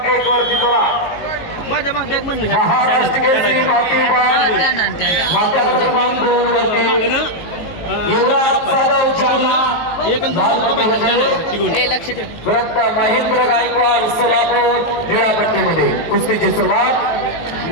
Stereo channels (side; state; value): right; late; 18 ms